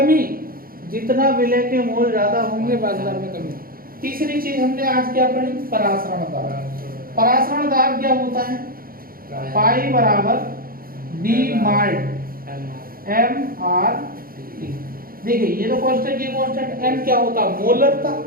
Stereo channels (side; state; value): left; late; 0.42 ms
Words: जितना विलय के मोल ज्यादा होंगे वाष्पदाब में कमी। तीसरी चीज हमने आज क्या पढ़ी, परासरण दाब। परासरण दाब क्या होता है, पाई बराबर डी माल्ट एम आर टी। देखिए ये तो कांस्टेंट, ये कांस्टेंट। एम क्या होता है, मोलरता।